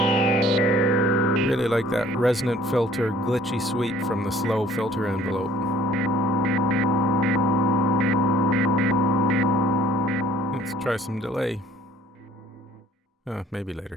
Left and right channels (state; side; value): normal; both; correlation 0.55